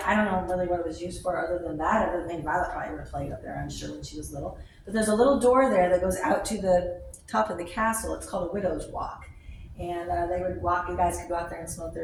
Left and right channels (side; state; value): both; identical; correlation 1.00